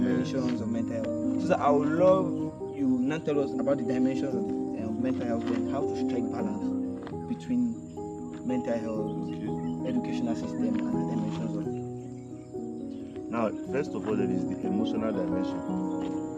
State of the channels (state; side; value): identical; both; correlation 1.00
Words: of mental health. So sir, I would love you now tell us about the dimensions of mental health and how to strike balance between mental health, educational system, and the dimensions of it. Now, first of all, there is the emotional dimension.